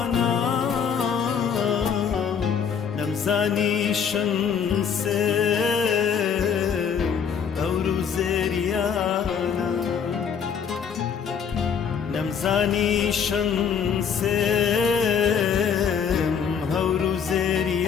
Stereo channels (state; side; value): quieter; right; 7.2 dB